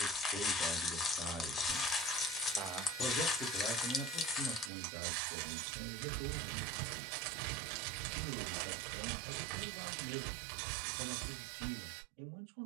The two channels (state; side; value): drops out; left; at 4.7 s